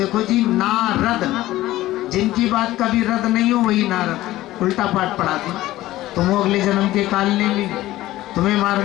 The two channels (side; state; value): right; quieter; 16.0 dB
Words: जी, नारद, जिनकी बात कभी रद्द नहीं हो वही नारद उल्टा पाठ पढ़ाते। तुम अगले जन्म के काल ने भी तुम्हें